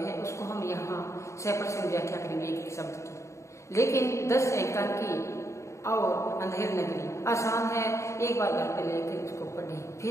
उसको हम यहाँ 100% व्याख्या करेंगे एक एक शब्द की। लेकिन 10 एकांकी और अंधेर नगरी आसान है, एक बार घर पे लेकर उसको पढ़ें,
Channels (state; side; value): late; right; 0.14 ms